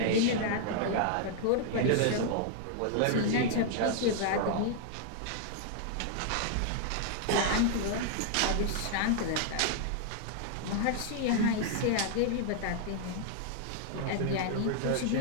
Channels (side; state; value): both; different; correlation -0.01